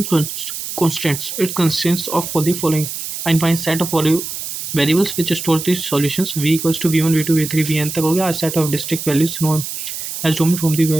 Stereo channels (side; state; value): right; noise; hiss, 6 dB below the sound